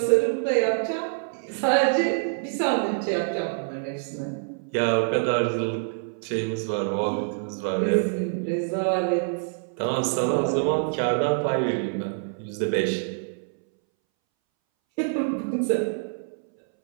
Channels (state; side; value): silent; left; 61 dB below the other